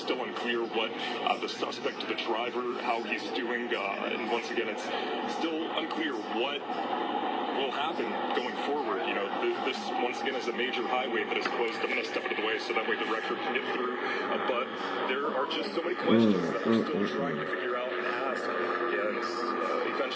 unclear what the suspect, the driver, how he's doing, and once again, it's still unclear what will happen going forward. You know, this once again is a major highway that is closed. I'm going to step out of the way so that way the record can get through. But there are just so many questions that we're still trying to figure out and ask, and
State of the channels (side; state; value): both; identical; correlation 1.00